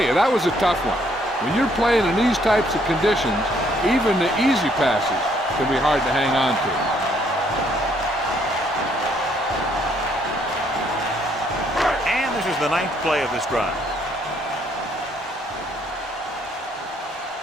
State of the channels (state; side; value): normal; both; correlation 0.68